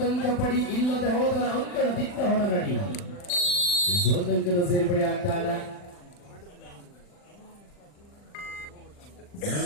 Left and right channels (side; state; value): right; late; 40 ms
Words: ಪಡಿ ಇಲ್ಲದೆ ಹೋದರ ಅಂಕಣದಿಂದ ಹೊರ ನಡಿ ಒಂದಂಕದ ಸೇರ್ಪಡೆ ಆಗ್ತಾ ಇದೆ